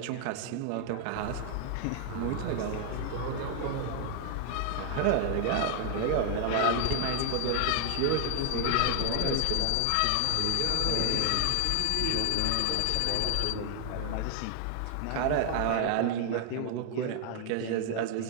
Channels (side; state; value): both; different; correlation 0.00